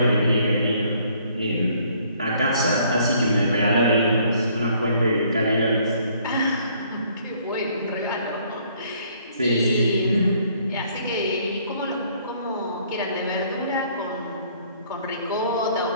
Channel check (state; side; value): inverted; both; correlation -0.63